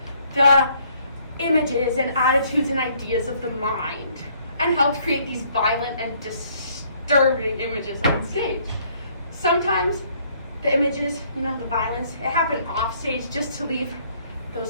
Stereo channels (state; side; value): inverted; both; correlation -0.64